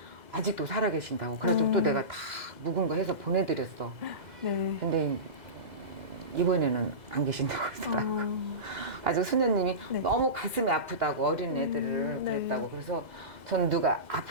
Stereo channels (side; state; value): left; late; 2.0 ms